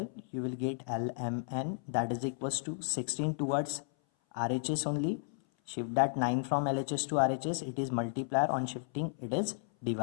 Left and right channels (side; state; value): right; silent; 55 dB below the other